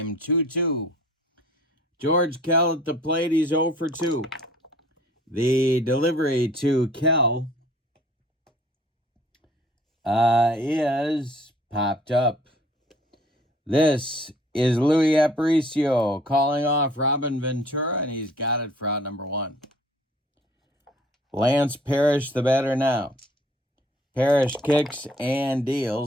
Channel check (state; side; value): normal; both; correlation 0.54